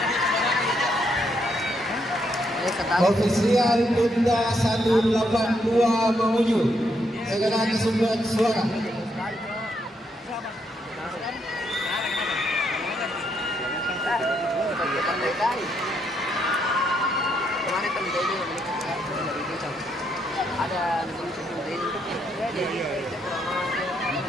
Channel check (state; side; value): normal; both; correlation 0.76